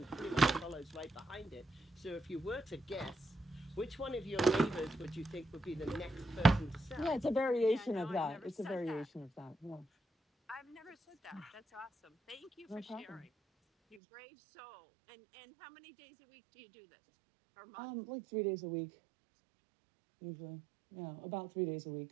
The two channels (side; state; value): left; drops out; at 14.0 s